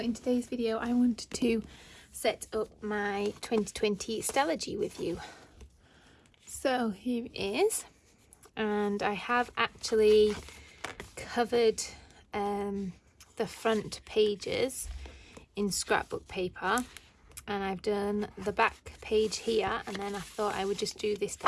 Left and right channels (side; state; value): both; identical; correlation 1.00